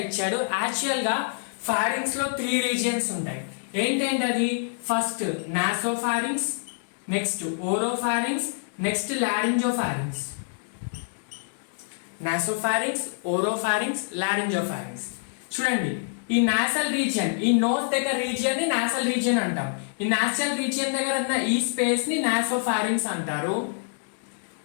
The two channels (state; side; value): silent; right; digital silence